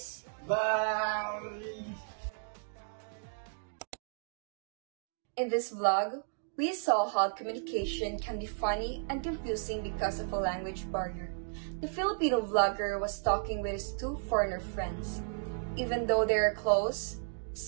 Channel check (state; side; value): silent; left; digital silence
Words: Bye! In this vlog, we saw how communication can be funny and confusing because of a language barrier. The Filipino vlogger was talking with his two foreigner friends. Even though they are close,